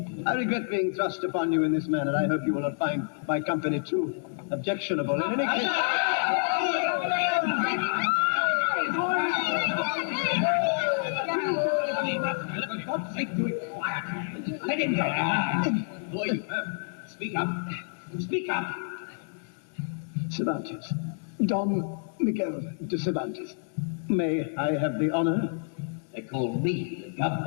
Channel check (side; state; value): right; silent; digital silence